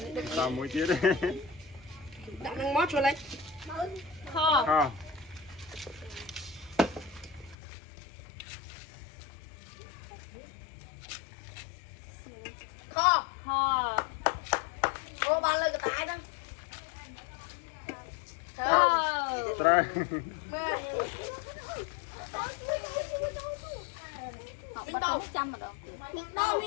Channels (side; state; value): right; drops out; at 7.6 s